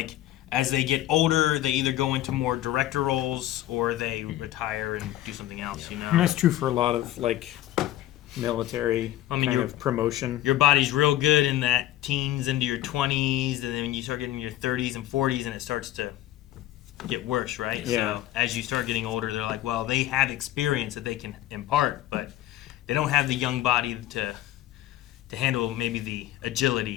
as they get older, they either go into more director roles or they retire and do something else. You know, and that's true for a lot of like military kind of promotion. Your body's real good in that teens into your 20s, and then when you start getting in your 30s and 40s, and it starts to get worse, right? Yeah. So as you start getting older, they're like, well, they have experience that they can impart, but they don't have the young body to handle maybe the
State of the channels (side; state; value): right; quieter; 14.1 dB